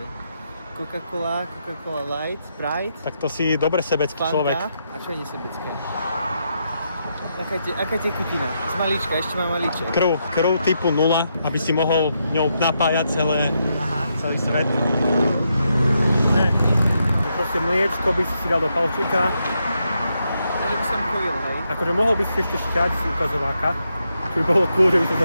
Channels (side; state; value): both; inverted; correlation -0.81